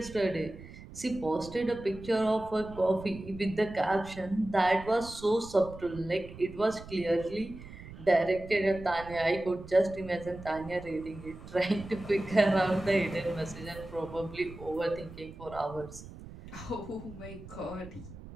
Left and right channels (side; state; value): right; noise; rumble, 15 dB below the sound